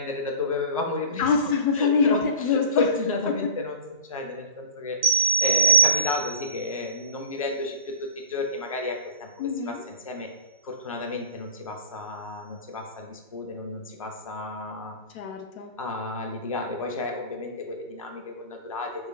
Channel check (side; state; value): both; inverted; correlation -0.43